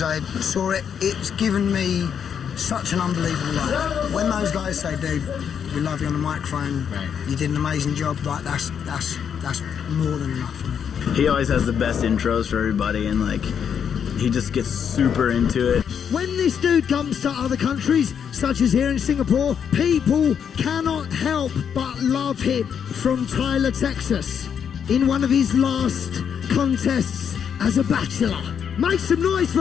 I saw it, it's given me such an unbelievable life. When those guys say, dude, we love you on the microphone, right, you did an amazing job, like that's more than enough for me. He always has the best intros for everybody, and like he just gets super into it. When this dude comes to other countries, such as here in Singapore, people cannot help but love him. From Tyler, Texas, in one of his last contests as a bachelor. Make some noise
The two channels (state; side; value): quieter; right; 7.8 dB